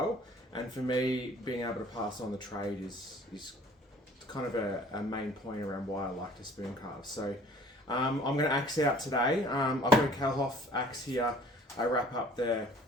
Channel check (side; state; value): both; normal; correlation 0.52